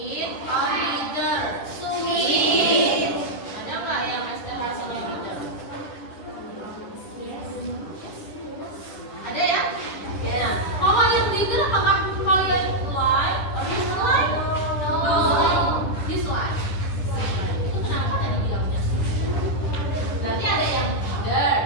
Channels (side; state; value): right; late; 10 ms